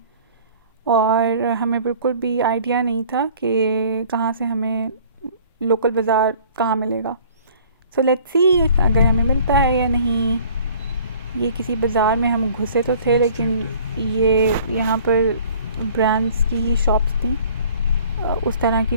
और हमें बिल्कुल भी आइडिया नहीं था कि कहाँ से हमें लोकल बाज़ार कहाँ मिलेगा। सो लेट्स सी अगर हमें मिलता है या नहीं। ये किसी बाज़ार में हम घुसे तो थे, लेकिन ये यहाँ पर ब्रांड्स की ही शॉप्स थी, उस तरह की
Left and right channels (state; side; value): inverted; both; correlation -0.51